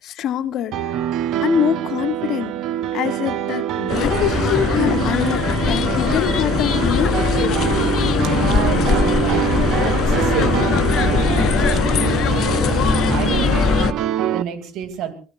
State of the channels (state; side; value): normal; both; correlation 0.52